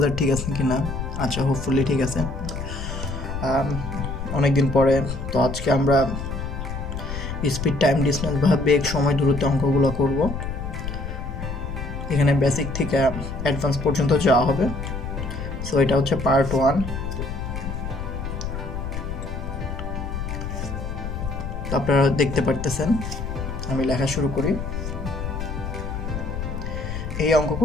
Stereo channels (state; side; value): noise; left; rumble, 5 dB below the sound